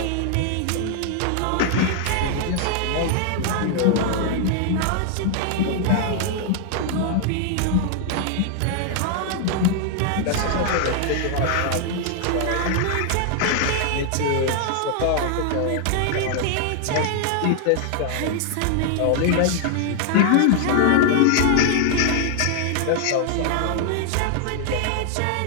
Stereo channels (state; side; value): different; both; correlation 0.00